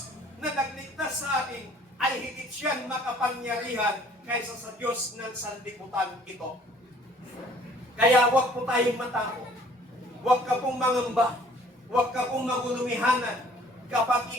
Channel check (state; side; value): normal; both; correlation 0.56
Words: na nagligtas sa atin, ay higit siyang makapangyarihan kaysa sa Diyos ng sanlibutan ito. Kaya huwag po tayong matakot. Huwag ka pong mangamba. Huwag ka pong magulumihanan kapag